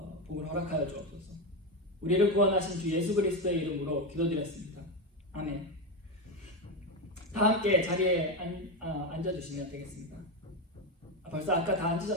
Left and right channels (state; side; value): normal; both; correlation 0.11